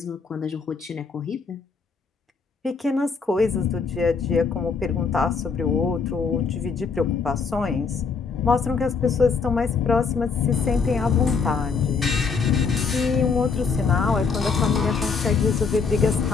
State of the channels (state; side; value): quieter; right; 5.2 dB